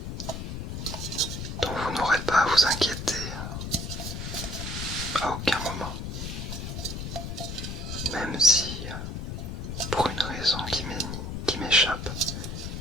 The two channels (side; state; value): left; noise; rumble, 5 dB below the sound